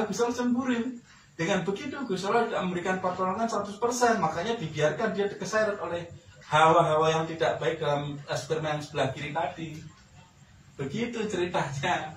Gusti Allah cemburu. Dengan begitu Gusti Allah tidak memberikan pertolongan 100%, makanya dibiarkan dia keseret oleh hawa-hawa yang tidak baik dalam sperma yang sebelah kiri tadi. Begitu ceritanya.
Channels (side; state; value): both; identical; correlation 1.00